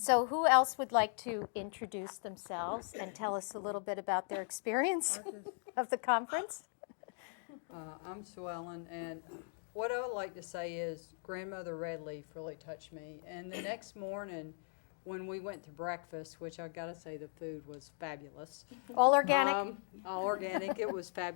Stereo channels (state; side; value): silent; right; 52 dB below the other